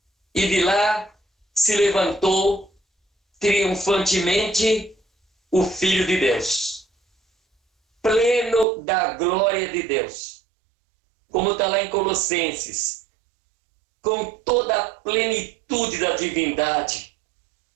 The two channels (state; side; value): drops out; left; at 8.7 s